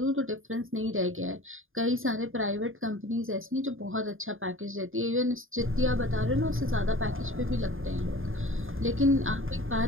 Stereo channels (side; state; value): left; late; 0.59 ms